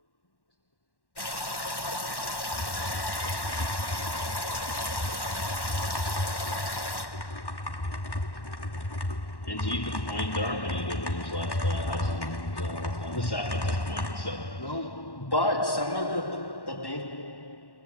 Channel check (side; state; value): right; late; 1.1 ms